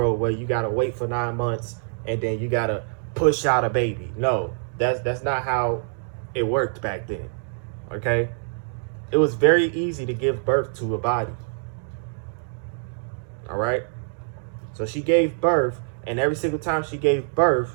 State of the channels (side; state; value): left; silent; digital silence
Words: where you got to wait for 9 months and then you got to push out a baby. No, that's not how it worked back then. Okay? It was very easy to give birth to a body. All right? So she gave birth, and every single time she gave birth,